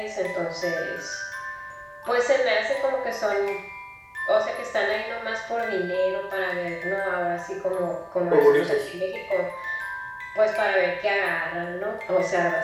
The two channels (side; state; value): both; identical; correlation 1.00